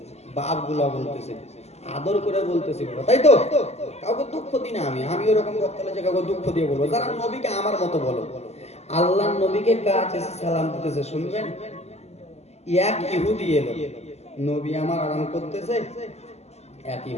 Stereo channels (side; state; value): right; late; 0.31 ms